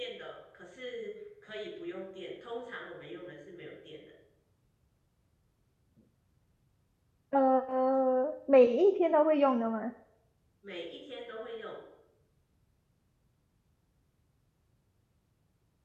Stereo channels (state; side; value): identical; both; correlation 1.00